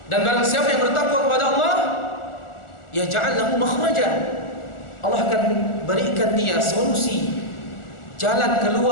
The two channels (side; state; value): right; late; 1.4 ms